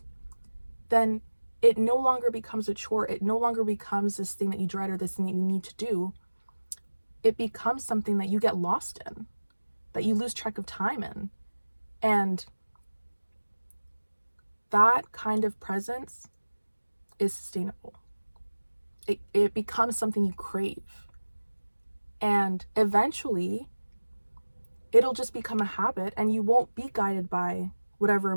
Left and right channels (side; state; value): both; inverted; correlation -1.00